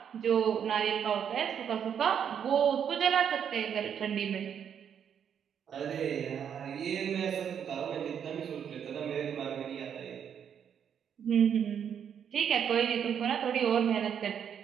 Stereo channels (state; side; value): quieter; left; 8.2 dB